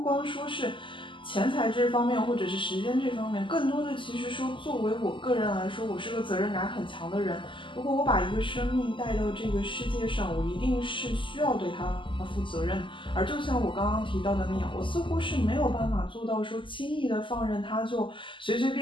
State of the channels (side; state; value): right; late; 0.25 ms